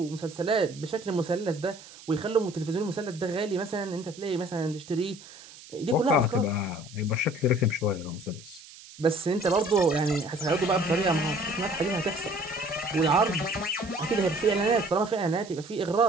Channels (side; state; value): right; noise; hiss, 19 dB below the sound